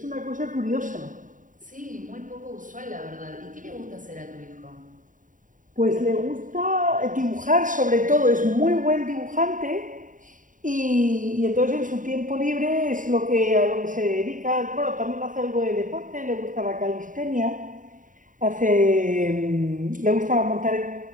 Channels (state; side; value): late; left; 0.38 ms